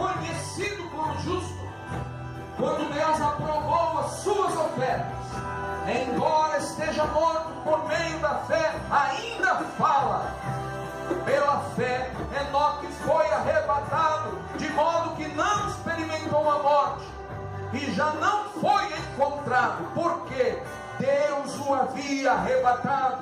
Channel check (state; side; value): identical; both; correlation 1.00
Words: como justo quando Deus aprovou as suas ofertas. Embora esteja morto, por meio da fé ainda fala. Pela fé, Enoque foi arrebatado, de modo que não experimentou a morte, e já não foi encontrado, porque Deus o havia